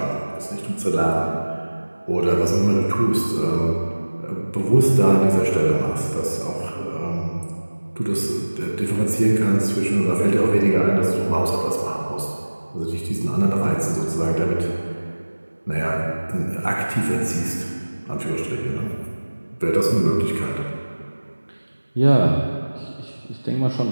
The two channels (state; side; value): inverted; both; correlation -1.00